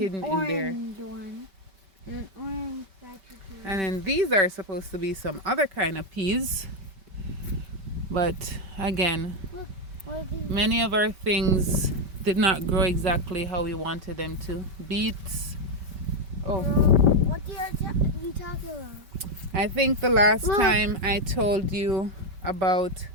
in there. One. An orange And then these are supposed to be some other kind of peas. But again, many of our things did not grow exactly how we wanted them to. Beets. Oh. What are you talking about? I think the last time I told you about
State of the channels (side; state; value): left; late; 5.2 ms